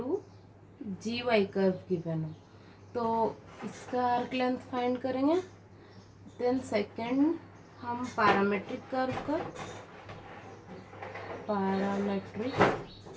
G Y curve given हो, तो इसका आर्क लेंथ फाइंड करेंगे। देन सेकंड हम पैरामेट्रिक कर्व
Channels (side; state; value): both; identical; correlation 1.00